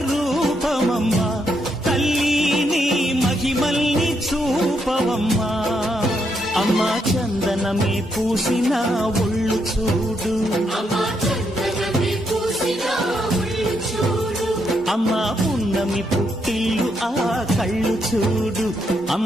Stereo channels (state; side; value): normal; both; correlation 0.78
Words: రూపమమ్మా, తల్లిని మహిమల్ని చూపవమ్మా. అమ్మా చందనమే పూసిన ఒళ్ళు చూడు, అమ్మా పున్నమి పుట్టిల్లు ఆ కళ్ళు చూడు,